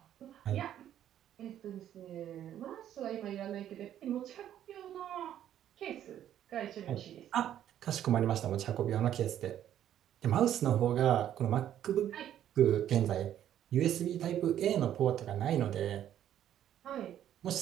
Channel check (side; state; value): left; quieter; 11.0 dB